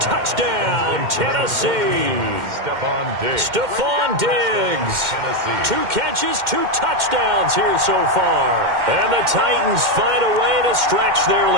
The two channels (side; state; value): left; late; 2.1 ms